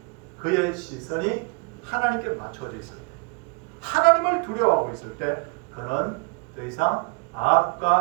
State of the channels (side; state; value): left; quieter; 30.6 dB